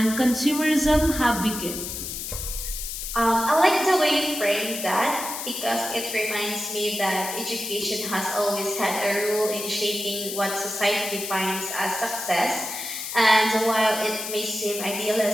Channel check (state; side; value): noise; left; hiss, 6 dB below the sound